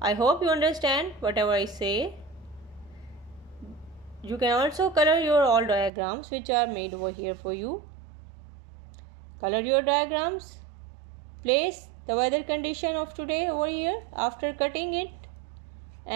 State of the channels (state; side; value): drops out; left; at 5.9 s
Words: I hope you understand whatever I say. You can also color your all diagrams which are made over here for you. Color your diagrams. Place the weather condition of today over here after cutting it